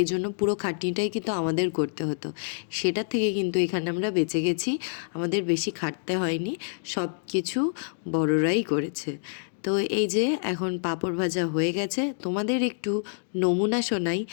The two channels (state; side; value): silent; right; digital silence